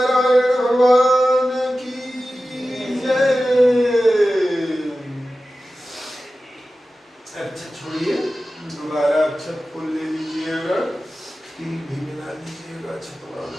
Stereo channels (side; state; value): both; normal; correlation 0.94